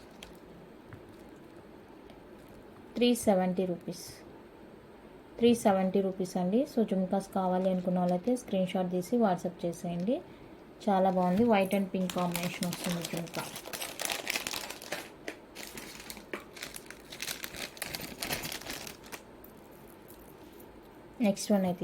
370 రూపీస్ 370 రూపీస్ అండి. సో జుమ్కాస్ కావాలి అనుకున్న వాళ్ళైతే స్క్రీన్ షాట్ తీసి వాట్సాప్ చేసేయండి. చాలా బాగుంది, వైట్ అండ్ పింక్ కాంబినేషన్ వస్తుంది జుమ్కా. నెక్స్ట్ వన్ అయితే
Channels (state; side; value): identical; both; correlation 1.00